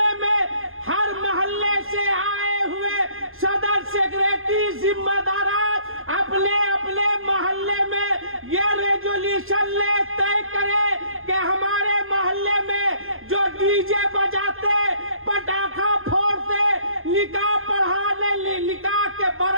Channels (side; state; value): left; late; 0.60 ms